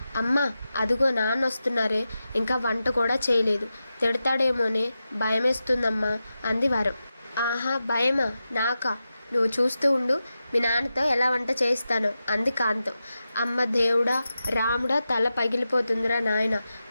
అమ్మ అదిగో నాన్న వస్తున్నారే, ఇంకా వంట కూడా చేయలేదు, తిడతాడేమోనే భయమేస్తుందమ్మా అంది వరం. ఆహా భయమా నాకా? నువ్వు చూస్తూ ఉండు, మీ నాన్నతో ఎలా వంట చేయిస్తాను అంది కాంతం. అమ్మ దేవుడా రాముడా, తల పగిలిపోతుందిరా నాయన,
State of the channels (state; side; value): inverted; both; correlation -0.91